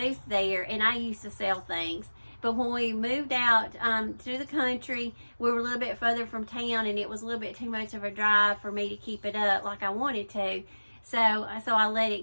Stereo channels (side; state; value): both; inverted; correlation -1.00